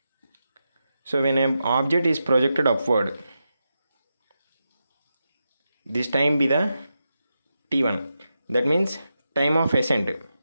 so when an object is projected upward, this time be the t1. That means time of ascent.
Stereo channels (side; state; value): both; inverted; correlation -0.88